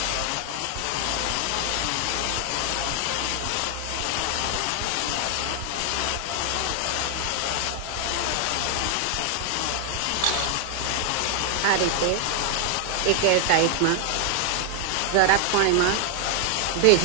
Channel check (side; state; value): both; different; correlation 0.00